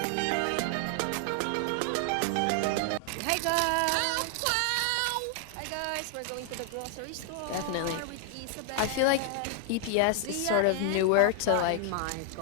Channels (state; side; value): different; both; correlation 0.00